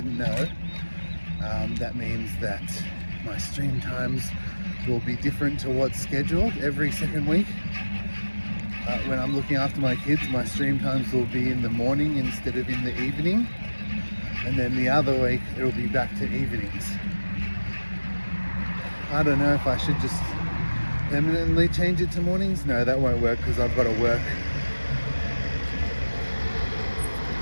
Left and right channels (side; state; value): both; inverted; correlation -1.00